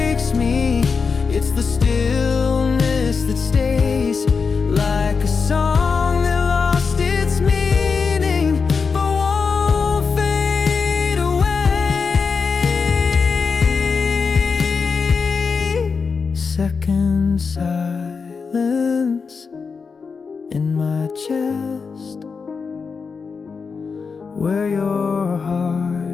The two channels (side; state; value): right; quieter; 5.2 dB